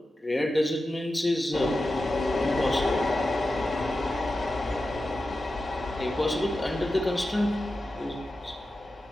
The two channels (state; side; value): normal; both; correlation 0.92